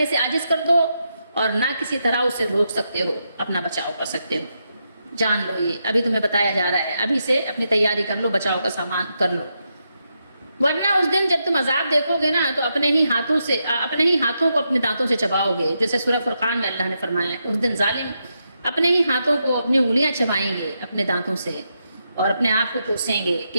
سے عاجز کر دو, اور نہ کسی طرح اسے روک سکتے ہو, اپنا بچاؤ کر سکتے ہو. جان لو یہ ابھی تمہیں بتایا جا رہا ہے, ابھی سے اپنی تیاری کر لو, بچاؤ کا سامان کر لو. ورنہ اس دن جب تم عذاب دیکھو گے نا تو اپنے ہی ہاتھوں کو اپنے دانتوں سے چباؤ گے. جیسے سورہ فرقان میں اللہ نے فرمایا ہے اس دن ظالم اپنے ہی ہاتھوں کو, اپنی انگلیاں چبائیں گے اپنے دانتوں سے, اور اپنے آپ کو کوسیں گے کہ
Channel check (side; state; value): both; inverted; correlation -0.84